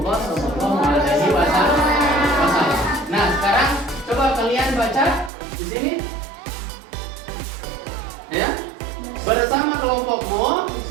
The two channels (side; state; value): left; drops out; at 5.3 s